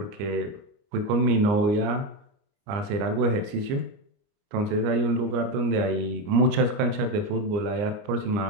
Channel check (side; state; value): left; late; 29 ms